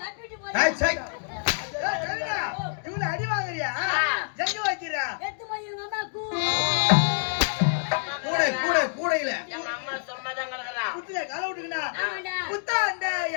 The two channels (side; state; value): right; silent; digital silence